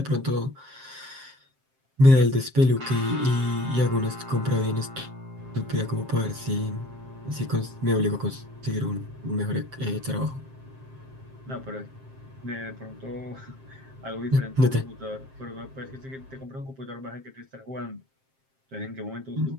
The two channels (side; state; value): left; late; 7.6 ms